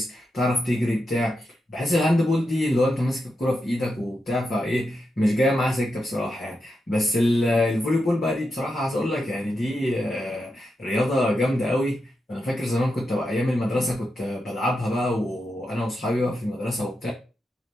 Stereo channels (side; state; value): both; normal; correlation 0.87